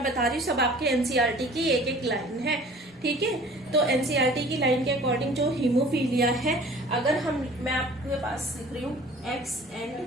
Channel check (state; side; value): normal; both; correlation 0.48